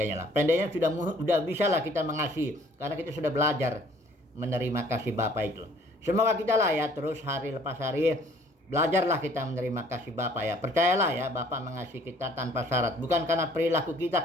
lah. Pendeknya sudah bisa lah kita mengasihi karena kita sudah belajar menerima kasih Bapa itu. Semoga kita lah ya terus hari lepas hari belajarlah kita menerima kasih Bapa ya. Percayalah ya, Bapa mengasihi kita tanpa syarat. Bukan karena perilaku kita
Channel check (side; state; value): both; normal; correlation 0.57